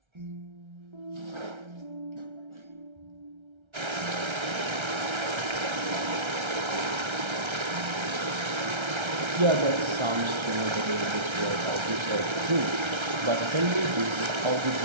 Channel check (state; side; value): late; left; 1.3 ms